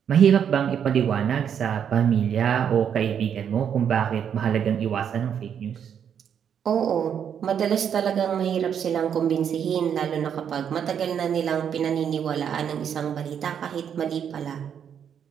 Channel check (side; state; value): left; quieter; 8.3 dB